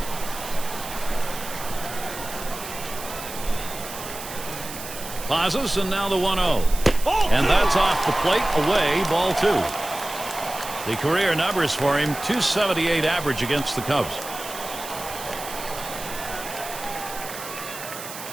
Pauses, and now the 1-0. And that's off the plate, away, ball 2. The career numbers for him, .278 average against the Cubs.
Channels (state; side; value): noise; right; hiss, 11 dB below the sound